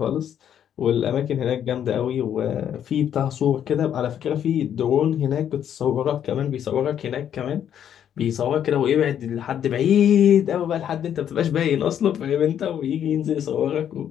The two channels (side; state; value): right; quieter; 9.5 dB